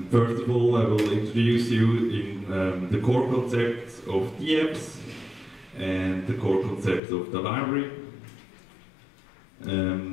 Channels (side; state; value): right; drops out; at 7.0 s